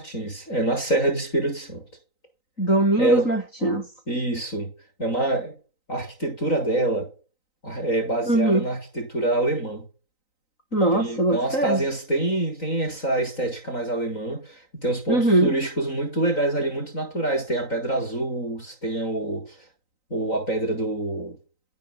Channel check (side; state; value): right; late; 3.9 ms